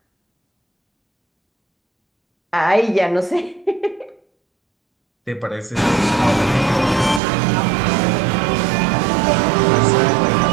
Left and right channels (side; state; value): left; drops out; at 7.2 s